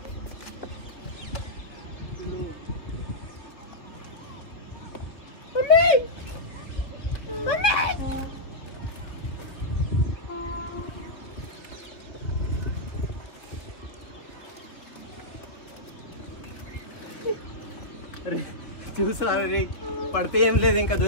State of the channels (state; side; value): late; right; 3.0 ms